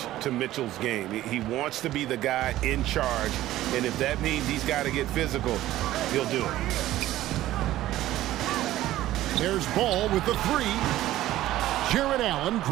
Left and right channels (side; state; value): left; quieter; 14.7 dB